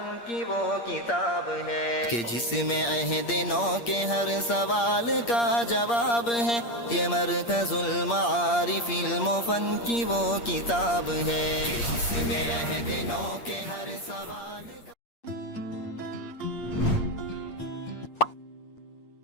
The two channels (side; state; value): right; late; 8.5 ms